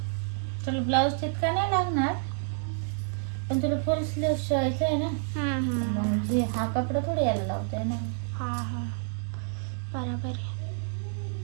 तुला ब्लाऊज तितका नाही लागणार, पण तुला फुल स्लीव शिवायचं आहे ना. मग हा कपडा थोडी यायला लावताय ना. हा, बरोबर आहे.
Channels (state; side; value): silent; left; 59 dB below the other